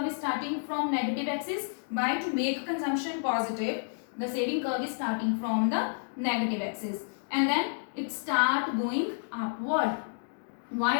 is starting from negative axis. Why? To make consumption positive, the saving curve is starting from the negative axis and then it start going upward.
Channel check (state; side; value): silent; right; digital silence